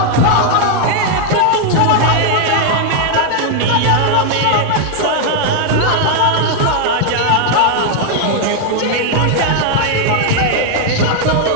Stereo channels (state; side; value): different; both; correlation 0.00